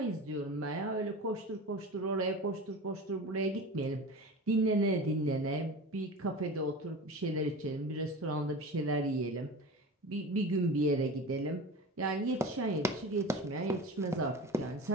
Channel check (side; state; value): both; normal; correlation 0.32